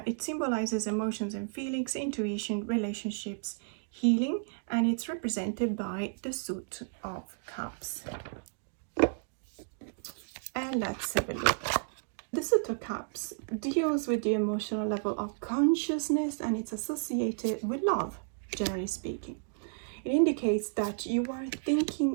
it symbolizes emotions and feelings, intuition, relationships, healing, and it's represented by the Suit of Cups. And let's have a look. The Suit of Cups deals with the emotional level of consciousness, and it's associated with love, generally speaking. It indicates that you are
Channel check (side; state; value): left; silent; digital silence